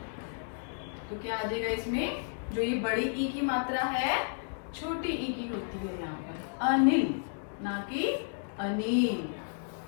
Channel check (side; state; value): right; silent; digital silence